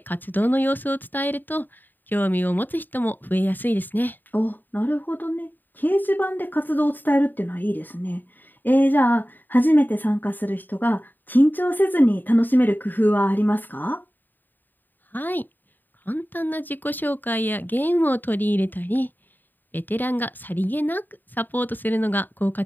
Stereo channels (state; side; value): late; right; 0.090 ms